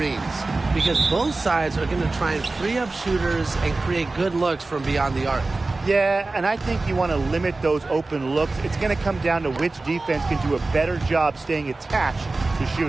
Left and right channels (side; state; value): left; quieter; 3.4 dB